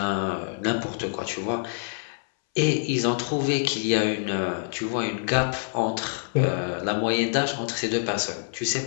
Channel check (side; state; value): right; silent; 61 dB below the other